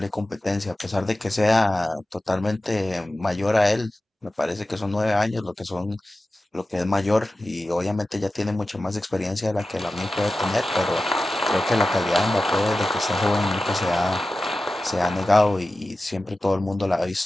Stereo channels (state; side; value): normal; both; correlation 0.94